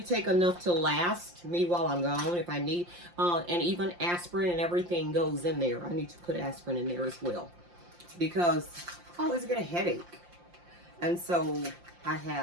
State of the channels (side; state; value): left; late; 5.7 ms